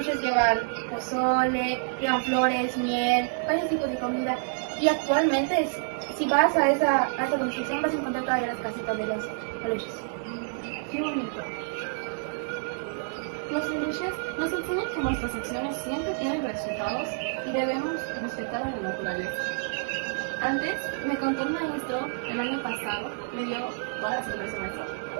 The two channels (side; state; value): left; silent; digital silence